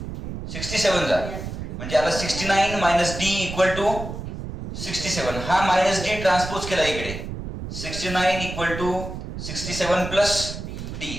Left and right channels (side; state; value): right; noise; rumble, 7 dB below the sound